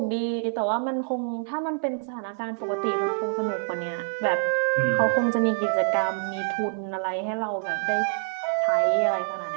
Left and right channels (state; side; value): silent; left; 58 dB below the other